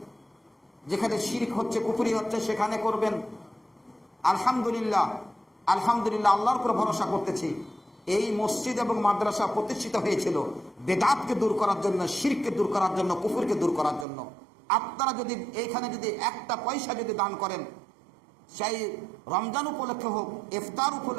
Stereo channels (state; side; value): drops out; left; at 14.1 s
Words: যেখানে শিরক হচ্ছে, কুফরি হচ্ছে সেখানে করবেন। আলহামদুলিল্লাহ আল্লাহর উপর ভরসা করতেছি। এই মসজিদ এবং মাদ্রাসা প্রতিষ্ঠিত হয়েছিল বেদাতকে দূর করার জন্য, শিরককে দূর করার জন্য, কুফরকে দূর করার জন্য। আপনারা যদি এইখানে যদি একটা পয়সা যদি দান করেন, সেই রমজান উপলক্ষে হোক, ইফতার